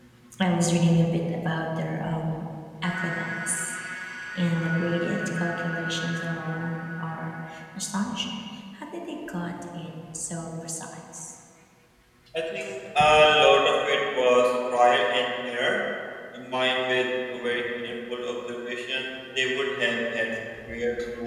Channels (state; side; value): identical; both; correlation 1.00